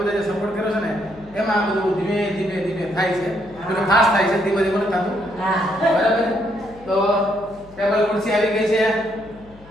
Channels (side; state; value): left; noise; hum, 23 dB below the sound